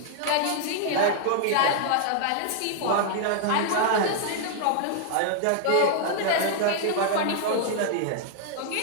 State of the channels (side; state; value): both; different; correlation -0.01